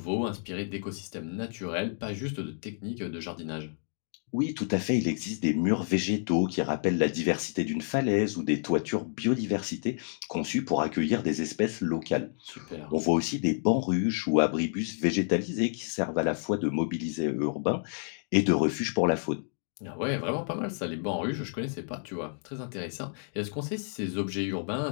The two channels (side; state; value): right; silent; digital silence